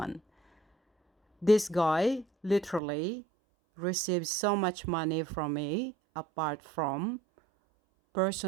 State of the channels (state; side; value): drops out; left; at 2.8 s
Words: This guy literally received so much money from me apart from